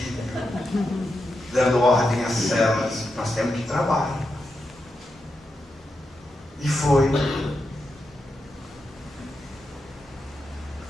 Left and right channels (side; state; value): both; normal; correlation 0.87